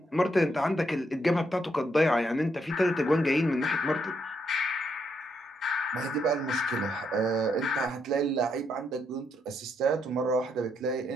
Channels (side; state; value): both; normal; correlation 0.77